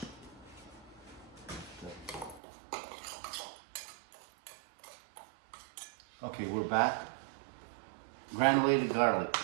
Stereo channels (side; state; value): left; drops out; at 2.4 s